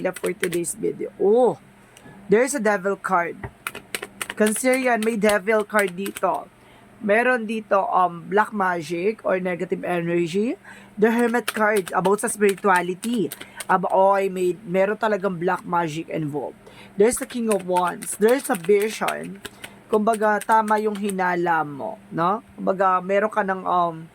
for today's video? Oh, there's a devil card. Cancerian, may devil card dito. Meron dito black magic or negative energy. The Hermit card about sa spirituality. Meron talagang black magic involved. There's the King of Wands. There's a vision. Kumbaga tama yung hinala mo, no? Kumbaga meron ka ng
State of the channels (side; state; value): both; identical; correlation 1.00